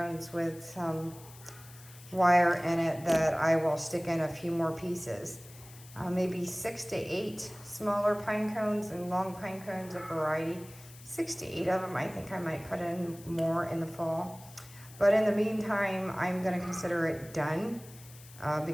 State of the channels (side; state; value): left; noise; hiss, 20 dB below the sound